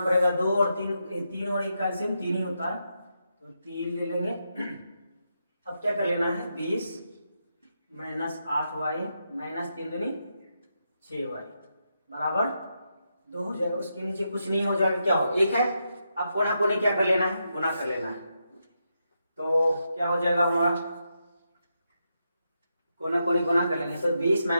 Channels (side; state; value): both; inverted; correlation -0.84